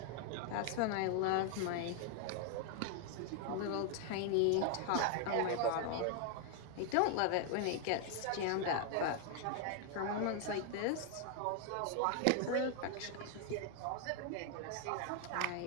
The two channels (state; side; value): different; both; correlation 0.00